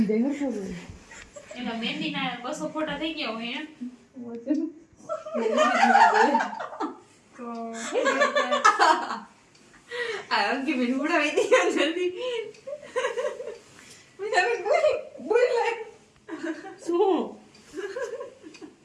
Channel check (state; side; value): identical; both; correlation 1.00